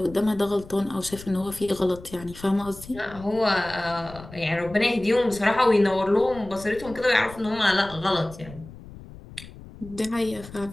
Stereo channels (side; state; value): left; noise; rumble, 17 dB below the sound